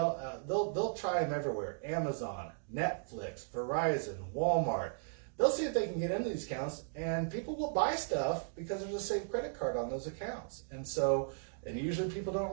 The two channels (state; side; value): silent; left; digital silence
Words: try them everywhere. Amazon, Netflix, Verizon, Walmart. They'll see if they can get into these accounts, and people will buy stuff because there's a saved credit card on those accounts. And usually people don't